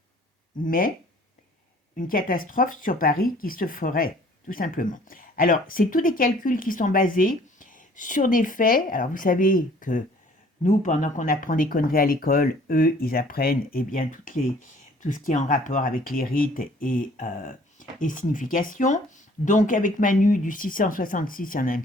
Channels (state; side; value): normal; both; correlation 0.55